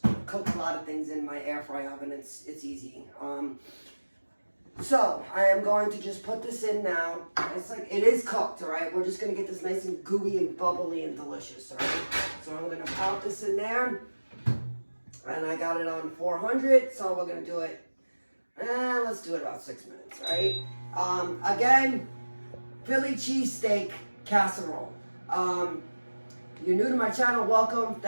cook a lot of things in my air fry oven. It's easy. So I am going to just put this in now. It is cooked, all right? We're just gonna get this nice and gooey and bubbly and delicious, all right? So I'm gonna pop this in there, and I got it on 400. So we're gonna do it. Let's do it about 6 minutes, all right? Again, Philly cheesesteak casserole. You're new to my channel, welcome.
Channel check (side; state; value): both; inverted; correlation -1.00